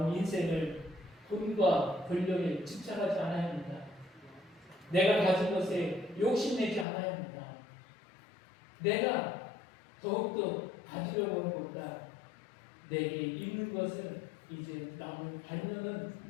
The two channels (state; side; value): drops out; right; at 6.9 s